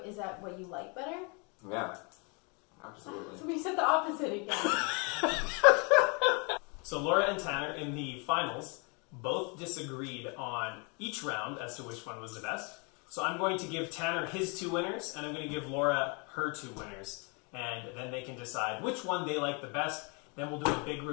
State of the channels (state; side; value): quieter; right; 33.1 dB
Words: is that what you like better? Yeah, absolutely. So we said the opposite again. So Laura and Tanner in the finals both disagreed on each round as to which one was the best. So I'm going to give Tanner his 2 winners, and I'm going to give Laura her 2 winners. And then they can decide which one they like the best. Then we'll do a big